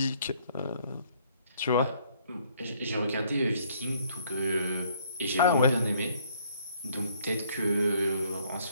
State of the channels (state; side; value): inverted; both; correlation -0.63